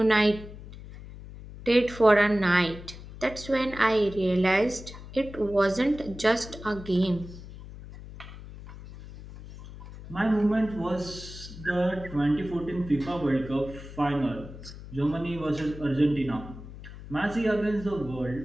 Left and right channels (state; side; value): noise; left; hum, 14 dB below the sound